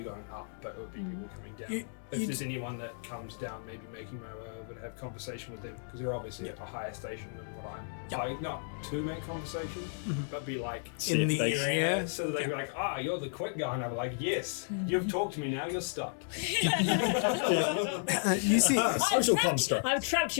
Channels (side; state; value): right; silent; digital silence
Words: going up, but it would be people coming down. If there's anyone that comes down, maybe making my way over to have conversation with them, because they're obviously at a higher station than what I'm. Like, not to make conversation, but be like In the area. so that they can be like, you're the quick guy, and I'll be like, yes, you've talked to me now, you're stuck. You see, Social construct. I've trapped